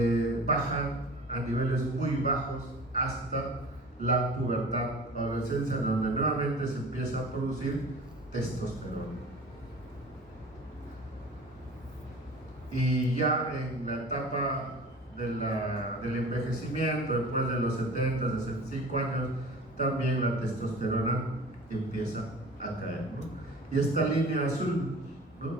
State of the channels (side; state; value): both; normal; correlation 0.41